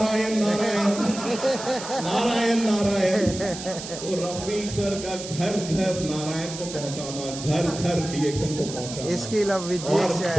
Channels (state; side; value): noise; right; hiss, 10 dB below the sound